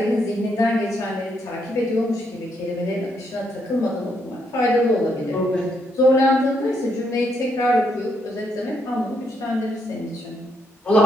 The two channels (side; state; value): both; normal; correlation 0.76